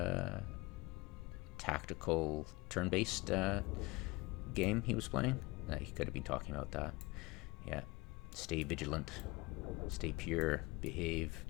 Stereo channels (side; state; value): right; quieter; 23.2 dB